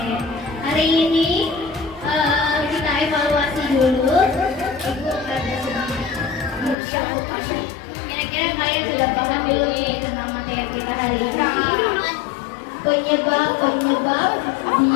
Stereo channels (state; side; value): drops out; right; at 6.8 s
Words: Hari ini kita evaluasi dulu. Ibu ada sedikit. Kira-kira kalian sudah paham belum nih tentang materi kita hari ini? Penyebab